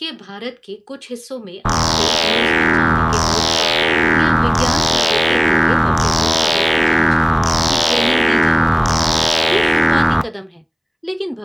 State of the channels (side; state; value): both; identical; correlation 1.00